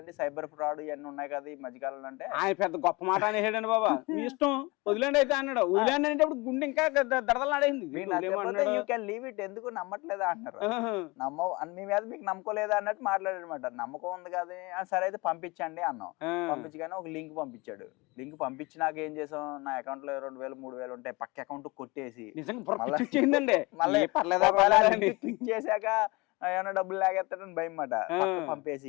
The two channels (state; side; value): quieter; right; 24.8 dB